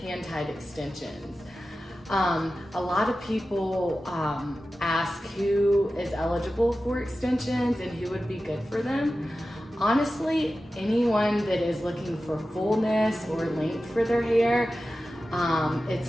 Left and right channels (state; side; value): normal; both; correlation 0.94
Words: extensions. A lot of people ask who is eligible for extensions and who would be good for them. Honestly, anyone that is looking for fullness or length for their hair,